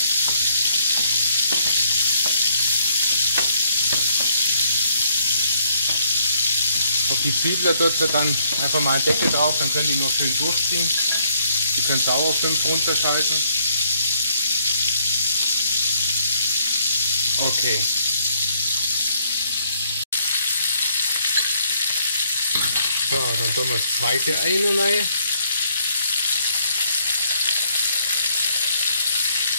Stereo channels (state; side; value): inverted; both; correlation -0.68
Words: Auf die Zwiebeln tut ihr dann einfach mal einen Deckel drauf, dann können die nur schön durchziehen. Die könnt ihr auch auf 5 runterschalten. Okay. So, dann tun wir das zweite Ei rein.